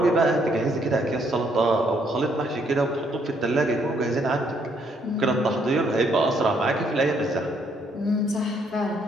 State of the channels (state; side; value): normal; both; correlation 0.70